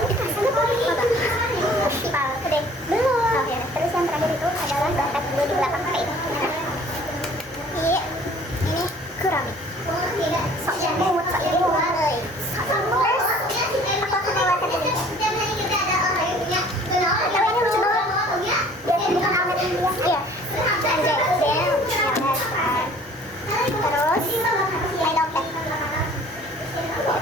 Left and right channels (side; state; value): both; normal; correlation 0.52